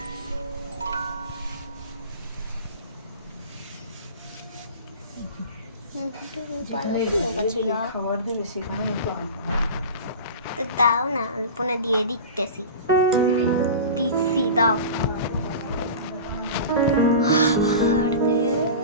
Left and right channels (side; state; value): both; inverted; correlation -0.33